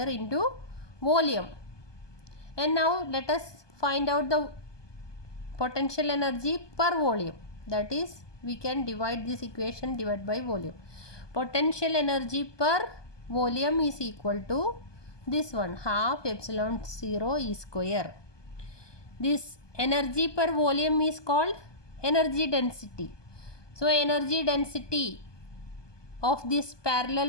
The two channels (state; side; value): late; right; 1.2 ms